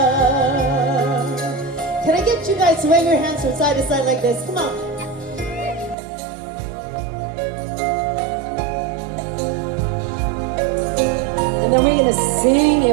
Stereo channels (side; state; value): left; drops out; at 6.0 s